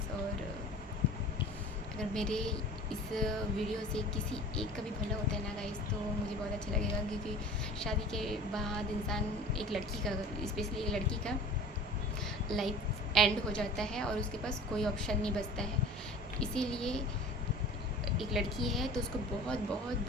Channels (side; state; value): both; normal; correlation 0.42